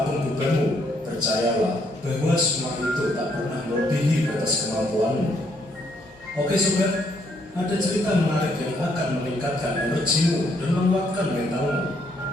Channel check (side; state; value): left; noise; hum, 27 dB below the sound